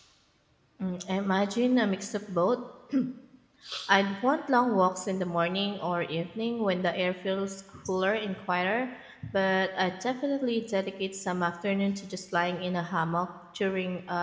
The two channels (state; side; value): identical; both; correlation 1.00